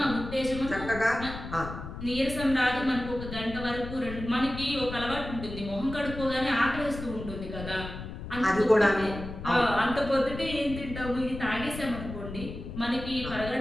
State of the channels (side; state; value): left; noise; rumble, 9 dB below the sound